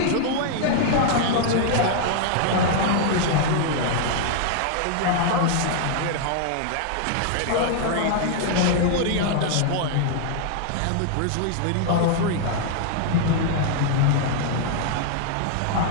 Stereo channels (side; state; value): both; different; correlation 0.00